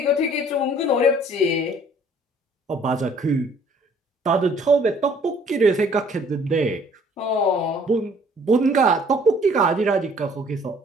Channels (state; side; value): normal; both; correlation 0.57